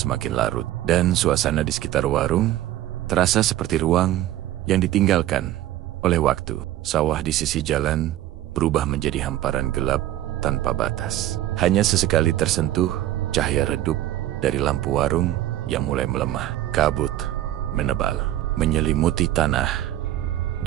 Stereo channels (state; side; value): quieter; left; 13.7 dB